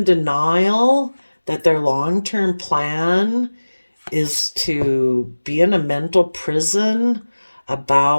denial that their long-term plan is to be in a mental prison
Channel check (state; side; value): inverted; both; correlation -1.00